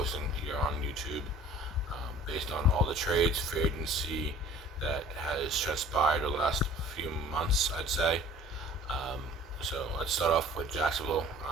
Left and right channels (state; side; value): normal; both; correlation 0.48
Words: here on YouTube, based on all the trades, free agency that has transpired the last few months, I'd say. So let's start off with Jacksonville.